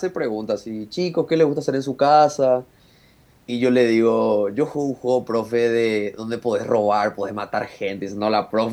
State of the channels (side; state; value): both; identical; correlation 1.00